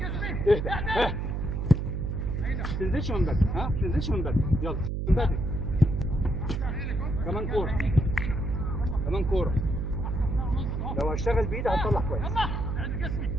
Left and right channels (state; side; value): noise; right; hum, 1 dB below the sound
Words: اهدى ها، ما تنزلش من بدري، ها ما تنزلش من بدري، يلا من بدري. كمان كوره، كمان كوره. لو هشتغل بايدي هتطلع كويس. يلا اعد جسمي.